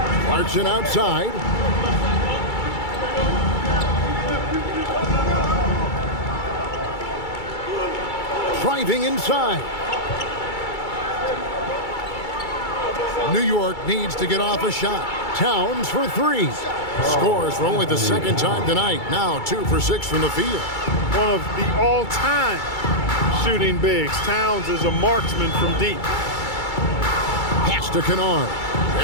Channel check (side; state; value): right; late; 2.3 ms